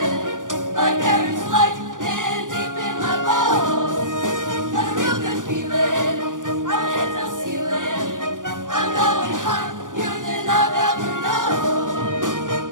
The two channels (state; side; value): late; left; 0.88 ms